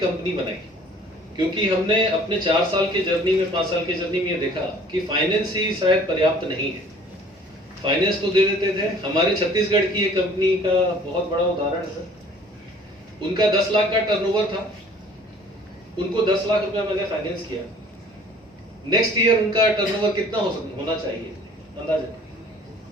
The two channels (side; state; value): both; normal; correlation 0.52